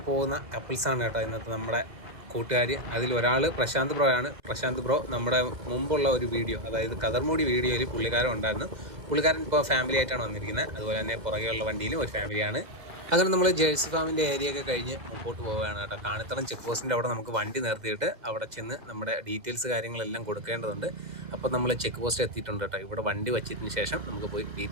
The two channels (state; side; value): late; left; 2.0 ms